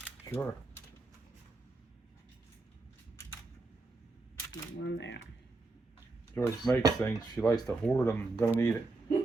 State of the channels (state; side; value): quieter; left; 3.4 dB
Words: Sure. One there. Joyce makes things. She likes to hoard them. Don't eat it.